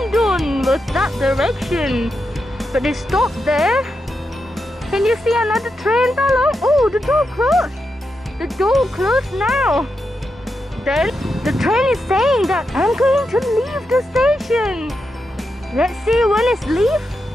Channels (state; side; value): normal; both; correlation 0.86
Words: with that direction. But it stopped there. Can you see another train, Talhong? Oh, the door closed. The door closed now. Then the train is saying that I'm going to leave the station. Let's see when it's leave.